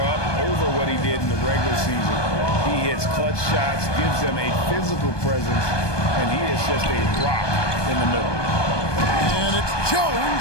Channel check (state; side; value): late; right; 1.2 ms